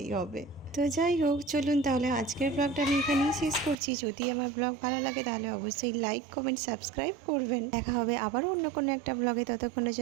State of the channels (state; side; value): drops out; left; at 3.8 s